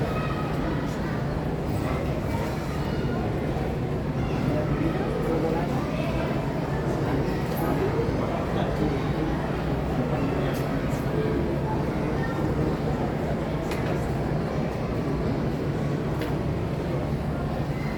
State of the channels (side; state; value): both; identical; correlation 1.00